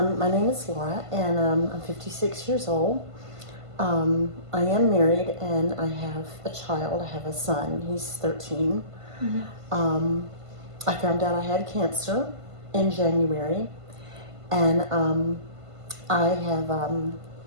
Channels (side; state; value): left; late; 1.5 ms